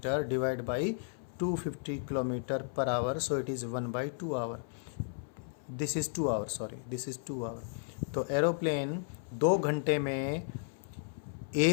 divide by 250 kilometre per hour, so it is 1/2 hour. This is 2 hour, sorry this is 2 hour. तो एरोप्लेन 2 घंटे में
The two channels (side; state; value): right; silent; 55 dB below the other